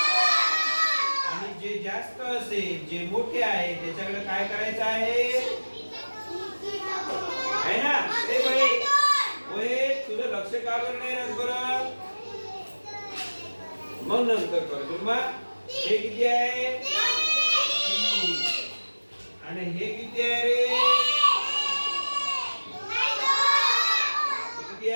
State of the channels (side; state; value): both; inverted; correlation -1.00